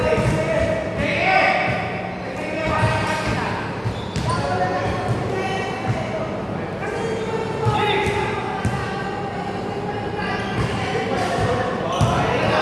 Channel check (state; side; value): identical; both; correlation 1.00